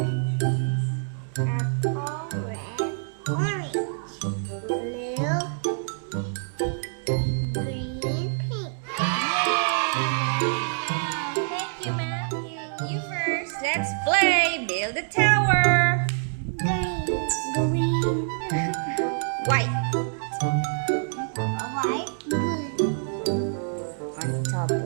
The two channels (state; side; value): silent; left; 61 dB below the other